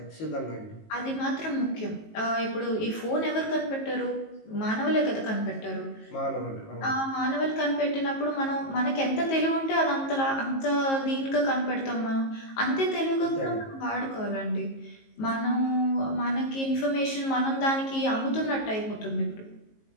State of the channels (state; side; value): late; right; 19 ms